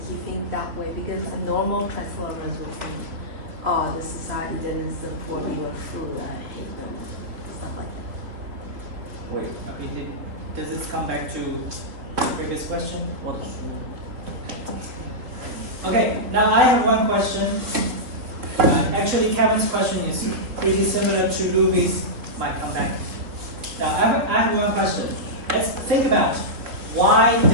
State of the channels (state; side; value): late; left; 3.6 ms